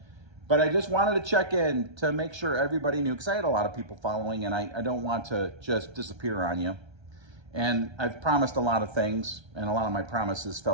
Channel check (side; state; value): left; late; 1.3 ms